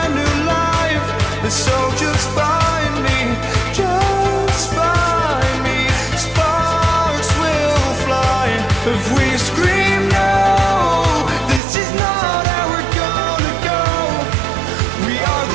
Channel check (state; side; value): drops out; left; at 11.6 s